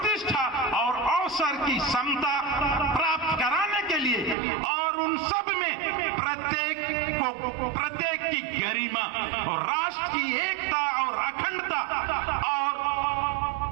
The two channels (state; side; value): drops out; left; at 4.4 s